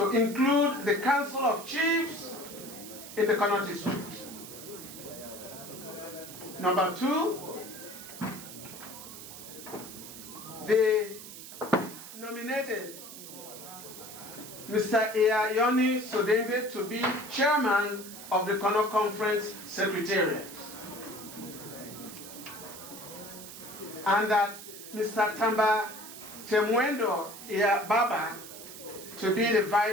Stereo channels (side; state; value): right; noise; hiss, 13 dB below the sound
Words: include the Council of Chiefs in the CONOP District. Number 2, they nominated Mr. Ayoni Sodenga to be chairman of the CONOP Conference Secretariat. And that Mr. Tamba Temwendo Baba to be the